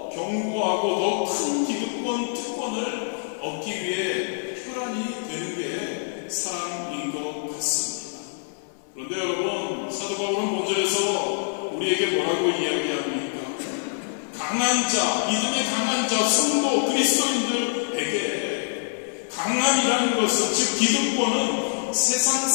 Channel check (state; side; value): silent; right; 58 dB below the other